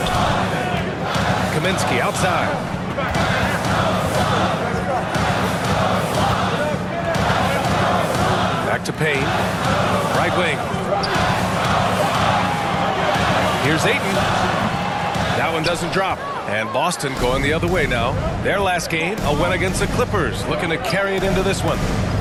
Kaminsky outside. Back to Payne. Right wing. Here's Ayton. That one doesn't drop. And Boston going the other way now. Their last game, a win against the Clippers, looking to carry it into this one.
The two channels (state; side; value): identical; both; correlation 1.00